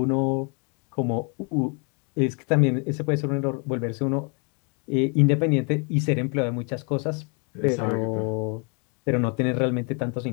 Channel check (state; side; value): quieter; right; 35.8 dB